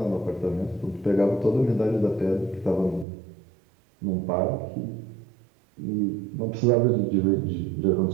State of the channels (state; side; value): drops out; left; at 3.1 s